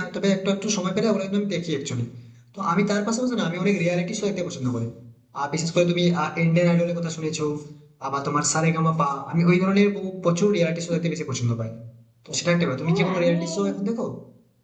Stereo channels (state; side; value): identical; both; correlation 1.00